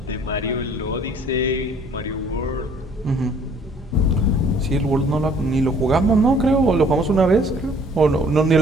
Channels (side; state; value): both; normal; correlation 0.57